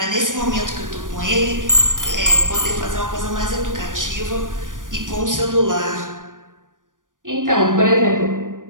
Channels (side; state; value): left; late; 0.88 ms